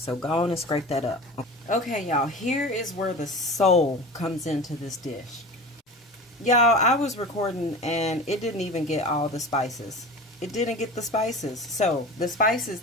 go on and scrape that up. Okay, y'all. Here is where the soul comes into this dish. Y'all, I was recording and it didn't even get all the spices. It didn't get the spices. So, the spices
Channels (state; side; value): normal; both; correlation 0.34